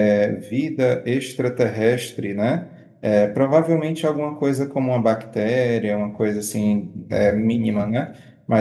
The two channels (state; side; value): identical; both; correlation 1.00